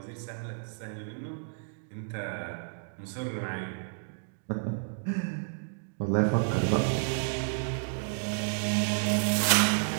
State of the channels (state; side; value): silent; left; digital silence